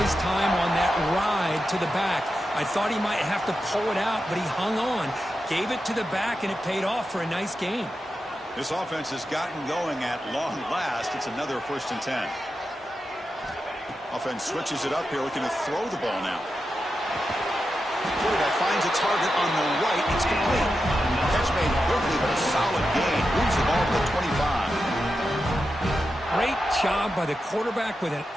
time on that ride to the back. I thought he might have to pull it out, but he hung on, gave it to the back, and it paid off for a nice gain. This offense has gotten going at long last. It's another 1st and 10. Offense switches it up here, looking to throw the ball now. Quarterback finds a target on the right. It's complete. Catch made quickly, but a solid gain. Moves the ball to the 25. Great job by the quarterback with an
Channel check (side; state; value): both; normal; correlation 0.89